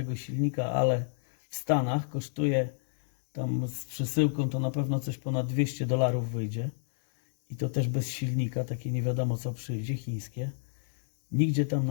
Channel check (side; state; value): right; silent; digital silence